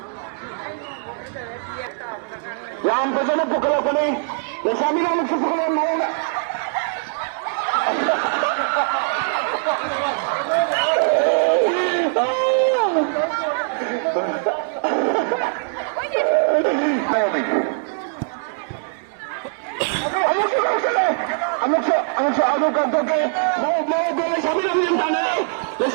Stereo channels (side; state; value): left; silent; digital silence